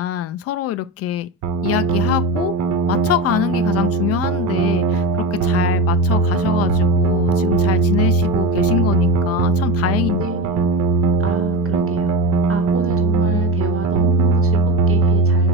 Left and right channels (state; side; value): normal; both; correlation 0.22